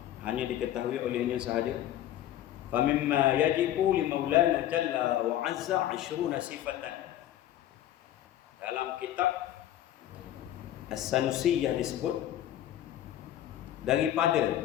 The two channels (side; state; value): right; quieter; 12.3 dB